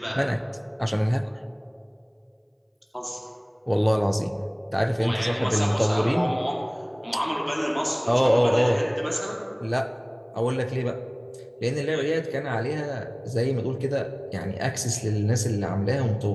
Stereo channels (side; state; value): both; identical; correlation 1.00